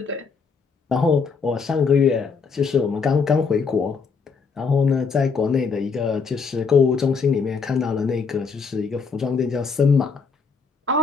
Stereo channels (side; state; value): right; quieter; 5.2 dB